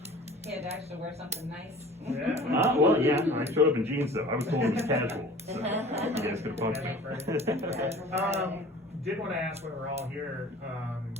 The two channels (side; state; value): both; normal; correlation 0.45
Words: He had to actually wear something nice. Yeah. Well, yeah, I showed up in jeans though. I was told it was casual. So you guys could have Did want to ask while we're all here,